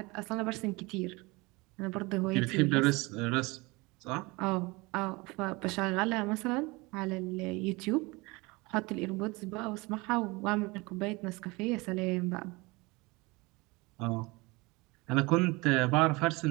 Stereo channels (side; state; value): left; quieter; 24.5 dB